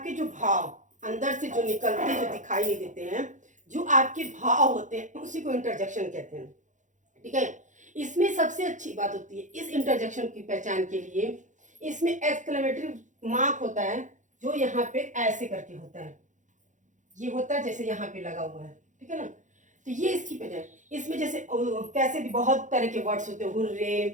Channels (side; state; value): left; late; 0.36 ms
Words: जो भाव अंदर से जो निकलते, जो दिखाई नहीं देते हैं, जो आपके भाव होते हैं उसी को इंटरजेक्शन कहते हैं। ठीक है, इसमें सबसे अच्छी बात होती है इस इंटरजेक्शन की पहचान के लिए, इसमें एक्सक्लेमेटरी मार्क होता है, जो यहाँ पे ऐसे करके होता है, ये होता है जैसे यहाँ पे लगा हुआ है। ठीक है ना, तो ये इसकी पहचान। इसमें जैसे कैसे भी बहुत तरह के वर्ड्स होते हैं,